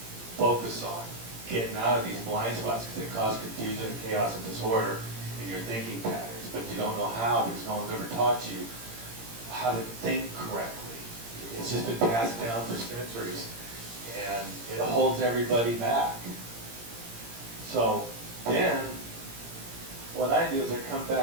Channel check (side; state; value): left; late; 17 ms